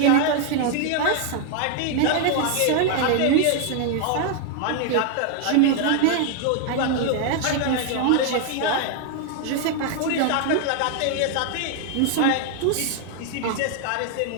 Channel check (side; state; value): both; different; correlation 0.00